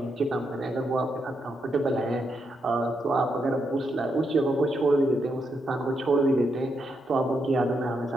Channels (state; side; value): normal; both; correlation 0.81